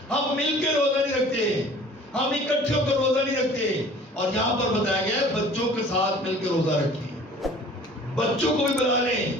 ہم مل کے روزہ نہیں رکھتے، ہم اکٹھے ہو کر روزہ نہیں رکھتے۔ اور یہاں پر بتایا گیا ہے بچوں کے ساتھ مل کے روزہ رکھیں، بچوں کو بھی بلا لیں،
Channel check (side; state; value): both; normal; correlation 0.48